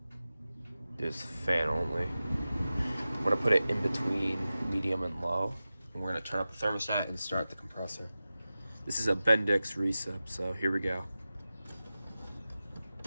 There's fan only. I'm going to put it in between medium and low. And we're going to turn up the thermostat and start the compressor. This is a Bendix recip, so here we go.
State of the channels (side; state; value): both; inverted; correlation -0.95